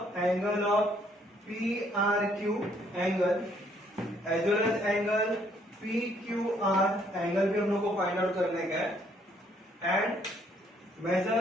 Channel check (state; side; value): normal; both; correlation 0.67